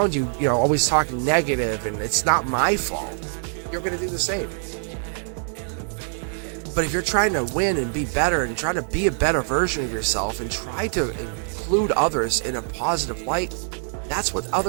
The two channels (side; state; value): left; silent; 63 dB below the other